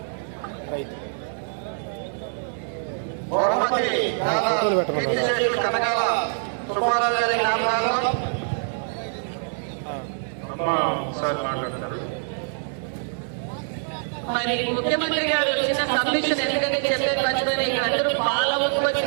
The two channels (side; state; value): left; silent; digital silence